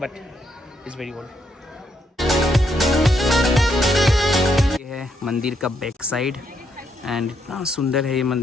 इज़ वेरी ओल्ड। ये है मंदिर का बैक साइड एंड इतना सुंदर है ये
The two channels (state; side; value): normal; both; correlation 0.76